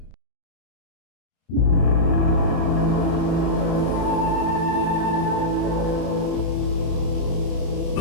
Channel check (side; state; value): right; late; 31 ms